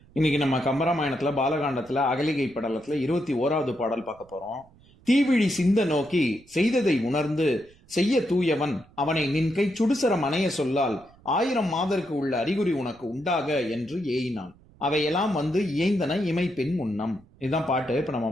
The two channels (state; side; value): noise; right; rumble, 27 dB below the sound